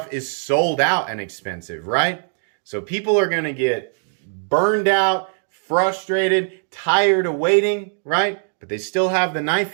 is sold out and expensive, right? So people are going to get burned out, frustrated, tired of waiting, right? But they still have the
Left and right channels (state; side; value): silent; left; 62 dB below the other